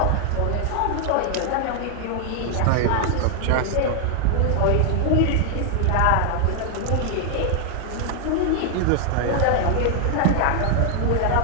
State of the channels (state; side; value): different; both; correlation 0.00